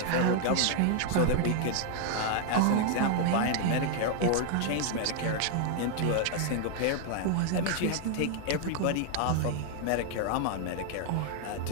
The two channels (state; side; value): different; both; correlation 0.00